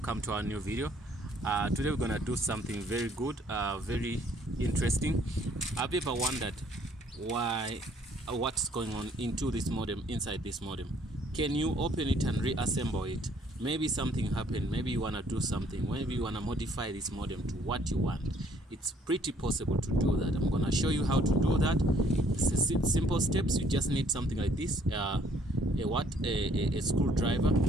to our new video. Today we're gonna do something very good, very interesting. Have you ever wondered what's going on into this modem, inside this modem? Can you open it and reassemble it? Maybe something happened, maybe you wanna do something, maybe you wanna modify this modem to what you want. It's pretty possible to do that. I'm gonna show you how to do that. It's simple steps. You just need something like this, a screwdriver.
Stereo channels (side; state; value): both; normal; correlation 0.63